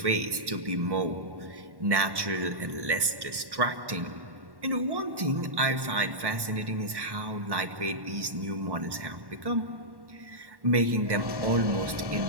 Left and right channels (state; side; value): late; left; 1.1 ms